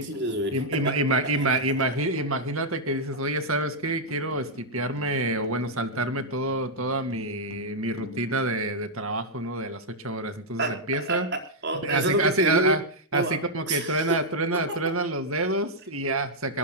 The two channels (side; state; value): both; normal; correlation -0.04